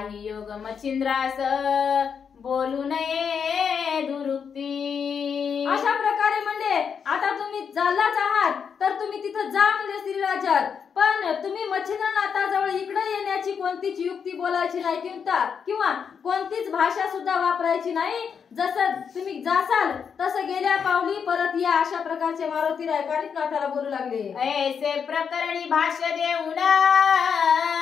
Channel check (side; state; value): right; quieter; 6.8 dB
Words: योग मच्छिंद्रास बोलू नये दुरुक्ती। अशा प्रकारे म्हणजे आता तुम्ही चाललाच आहात तर तुम्ही तिथं जा म्हणजे स्त्री राज्यात, पण तुम्ही मच्छिंद्रनाथाजवळ इकडे येण्याची कोणतीच युक्ती बोलायची नाही किंवा कोणतीच भाषा सुद्धा वापरायची नाही। जसं तुम्ही जासाल तसं गेल्या पावली परत या। अशा प्रकारचे मारुतीराय कानिपनाथाला बोलू लागले। ऐसे प्रकरणी भाष्य देऊन